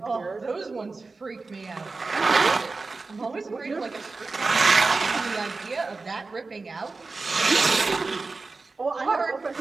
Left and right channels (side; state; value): left; quieter; 3.9 dB